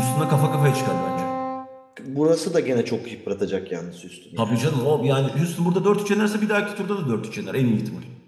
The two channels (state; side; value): identical; both; correlation 1.00